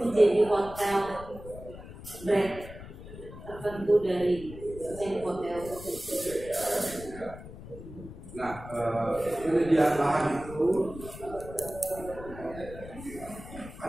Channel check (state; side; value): noise; left; rumble, 14 dB below the sound